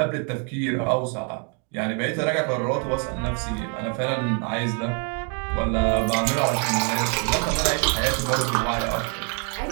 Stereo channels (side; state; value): left; quieter; 39.7 dB